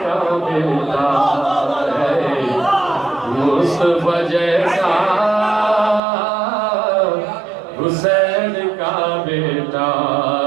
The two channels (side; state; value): left; drops out; at 6.0 s